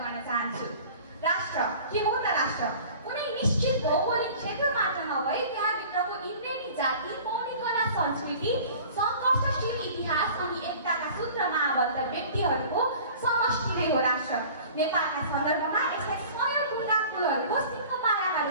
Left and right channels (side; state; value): both; inverted; correlation -0.44